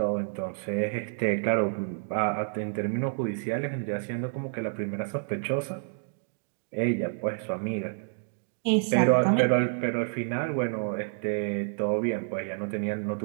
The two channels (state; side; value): silent; left; digital silence